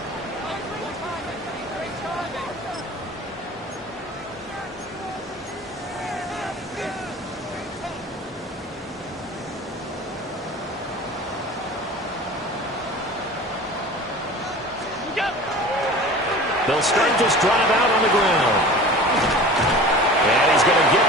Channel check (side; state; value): both; normal; correlation 0.39